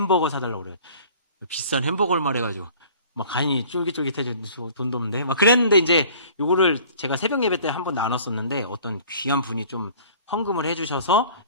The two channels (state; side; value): inverted; both; correlation -0.49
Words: 사달라고 그래요. 비싼 햄버거를 말해가지고 막 간이 쫄깃쫄깃해져 돈도 없는데 막 그랬는데 이제 요거를 제가 새벽 예배 때 한번 나눴었는데 어떤 귀한 분이 좀 헌금을 해주셔서